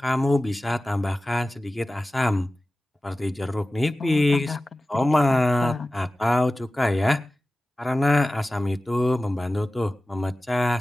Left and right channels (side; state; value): both; normal; correlation 0.96